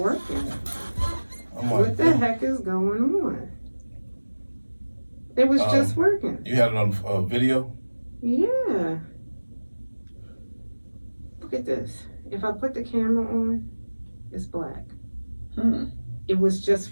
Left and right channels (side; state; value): both; inverted; correlation -1.00